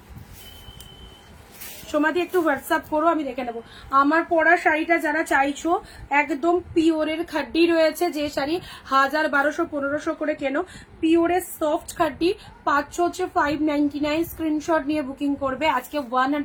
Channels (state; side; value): identical; both; correlation 1.00